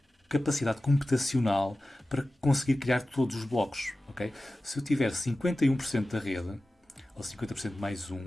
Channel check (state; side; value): normal; both; correlation 0.95